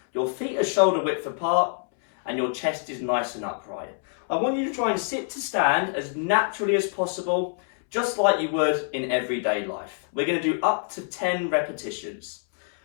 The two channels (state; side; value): silent; right; 61 dB below the other